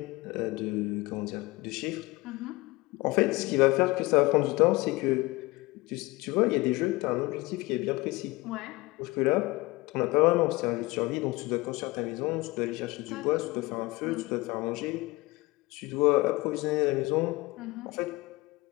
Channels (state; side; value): quieter; right; 22.1 dB